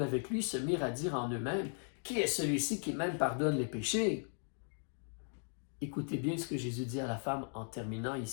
avec lui se mirent à dire en eux-mêmes, « Qui est celui-ci qui même pardonne les péchés? » Écoutez bien ce que Jésus dit à la femme en terminant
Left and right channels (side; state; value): right; silent; 53 dB below the other